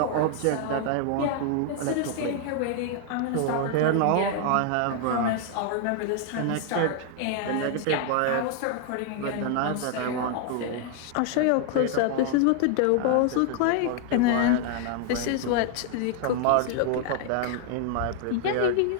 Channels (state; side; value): different; both; correlation 0.00